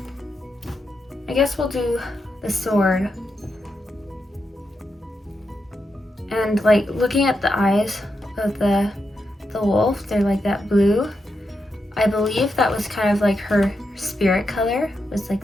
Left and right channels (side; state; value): both; normal; correlation 0.85